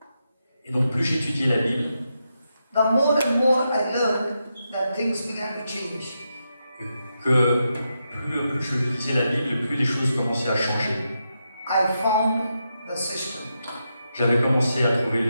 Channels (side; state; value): both; inverted; correlation -0.85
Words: Et donc plus j'étudiais la Bible, the more and more I learned that things began to change. que plus je lisais la Bible, plus les choses commençaient à changer. I found the system. J'avais commencé à trouver le